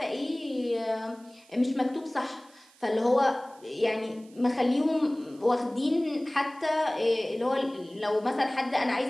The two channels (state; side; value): noise; right; hiss, 28 dB below the sound